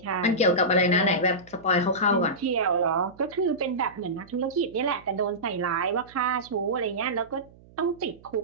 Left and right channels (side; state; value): right; noise; hum, 25 dB below the sound